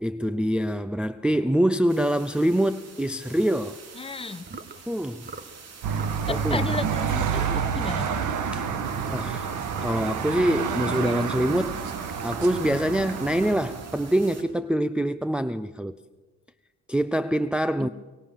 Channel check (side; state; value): both; normal; correlation 0.76